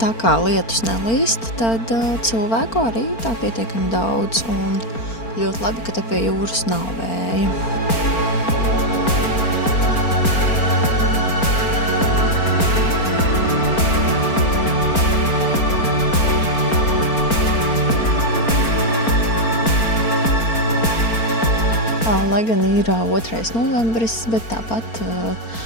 kā lietus nelīst, tad cilvēku arī tā pietiekami daudz un ļoti labi, ka te pie jūras nav vēja. Lai gan ir 2. novembris, bet tāpat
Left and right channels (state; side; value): late; right; 4.4 ms